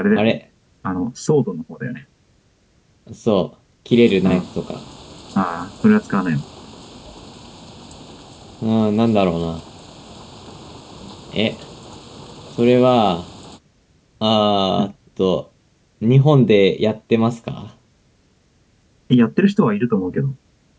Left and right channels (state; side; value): identical; both; correlation 1.00